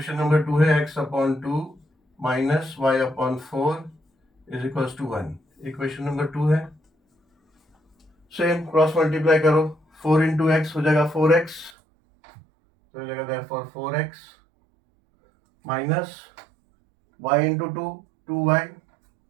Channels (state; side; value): drops out; left; at 11.7 s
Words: नंबर 2 है x/2 minus y/4 is equal to 1। Equation number 2 है, सेम क्रॉस मल्टीप्लाई करो, 4 इंटू एक्स हो जाएगा 4x, तो हो जाएगा therefore 4x minus y into 2 2y